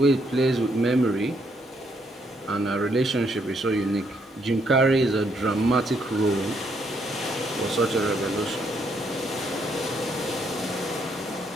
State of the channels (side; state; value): both; normal; correlation 0.73